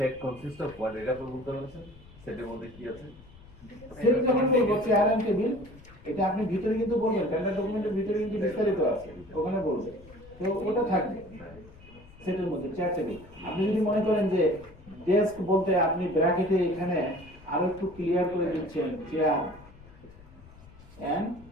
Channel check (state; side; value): noise; left; rumble, 21 dB below the sound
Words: কনসিস্ট অফ হোয়াট? এটা আপনি বলতে পারছেন সেটের মধ্যে কি আছে? সেট যখন বলবো চেয়ার এন্ড টেবিল, এটা আপনি ভিতরে কিন্তু বলবেন, টেন্ডার ডকুমেন্টের ভিতরে কিন্তু বিস্তারিত আছে, ওখানে বলবেন, তো ওটা থাকবে সেটের মধ্যে চেয়ার টেবিল। আপনি যদি মনে করেন যে ডেস্ক বলতে আপনি ব্র্যাকেটে এখানে আরো একটু ক্লিয়ার করে দিচ্ছেন চেয়ার এন্ড